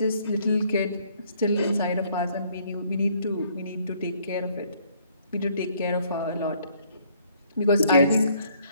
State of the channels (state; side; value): inverted; both; correlation -0.64